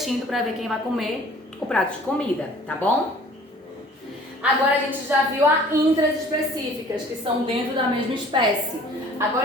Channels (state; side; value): normal; both; correlation 0.51